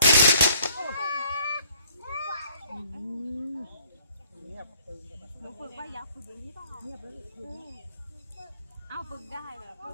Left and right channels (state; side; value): inverted; both; correlation -0.60